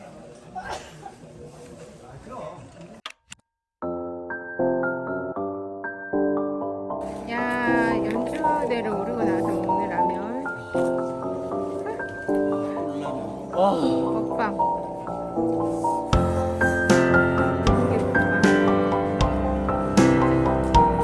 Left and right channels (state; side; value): identical; both; correlation 1.00